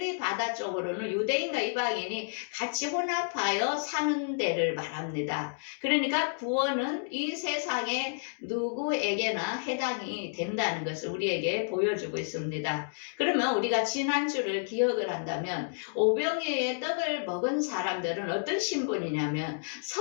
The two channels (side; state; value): right; silent; digital silence